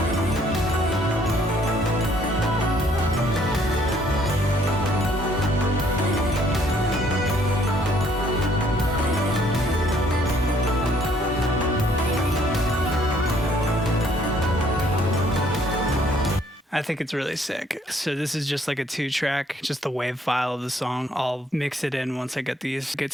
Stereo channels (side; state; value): both; normal; correlation 0.64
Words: I think it's really sick. So this is just like a 2-track, just the wave file of the song. I'll mix it in once I get these